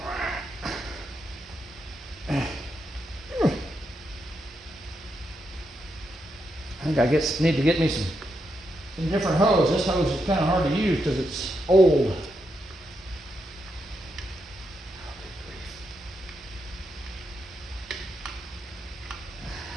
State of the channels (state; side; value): normal; both; correlation 0.83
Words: I think I need to get me some different hose. This hose is kind of hard to use because it's old.